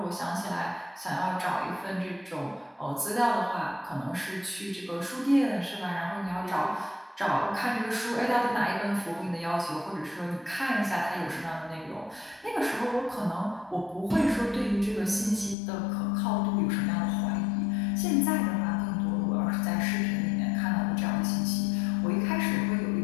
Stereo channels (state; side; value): drops out; right; at 15.6 s